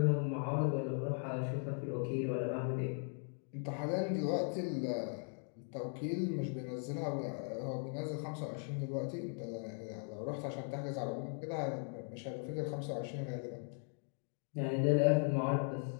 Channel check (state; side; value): silent; right; 52 dB below the other